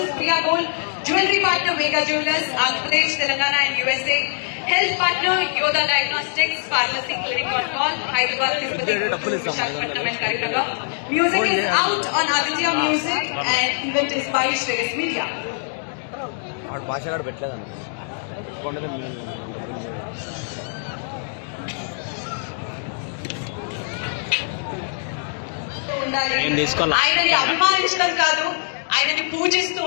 Priya Gold, Jewelry Partner Mega Jewelers, Andhra Pradesh, Telangana and USA. Health Partner Yoda Diagnostics, Pharmacy Clinic on Call, Hyderabad, Tirupati, Visakhapatnam and Karimnagar. Music is out on Aditya Music and event is by Shreyas Media. ఆయనని అభిమానించడం కాదు, ఆయనని పూజిస్తూ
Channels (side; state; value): right; silent; digital silence